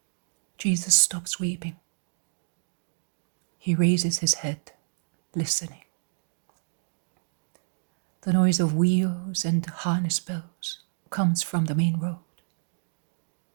Jesus stops weeping. He raises his head, listening. The noise of wheels and harness bells comes from the main road.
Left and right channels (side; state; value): left; silent; digital silence